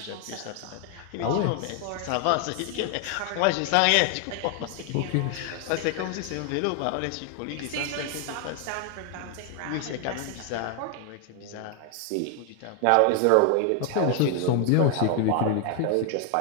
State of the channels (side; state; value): both; different; correlation 0.00